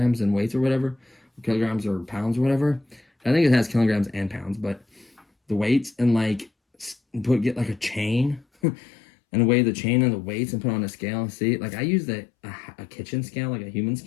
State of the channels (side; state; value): right; drops out; at 8.5 s